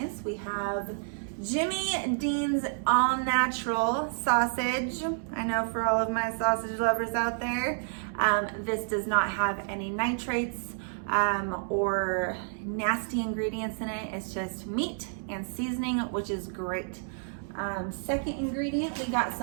We have Jimmy Dean's all natural sausage. I know for all of my sausage lovers out there, this does not have any nitrates or nasty ingredients in it. It's just meat and seasoning, which is great. Second ingredient, we got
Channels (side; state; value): left; silent; 58 dB below the other